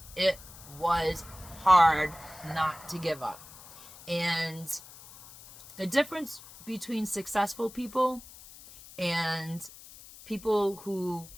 it was hard not to give up. And the difference between successful people and people who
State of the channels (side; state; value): left; noise; hiss, 18 dB below the sound